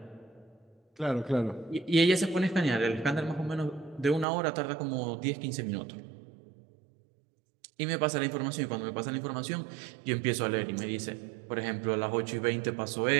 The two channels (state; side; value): drops out; left; at 4.2 s